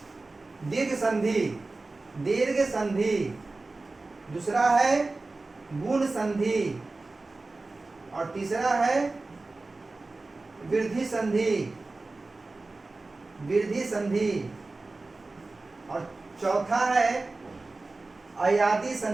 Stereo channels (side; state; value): left; quieter; 3.4 dB